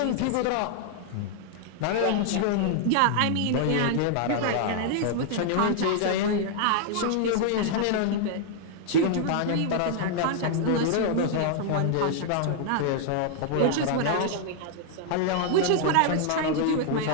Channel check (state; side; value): different; both; correlation 0.00